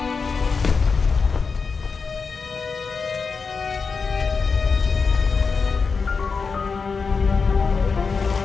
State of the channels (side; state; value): right; quieter; 5.0 dB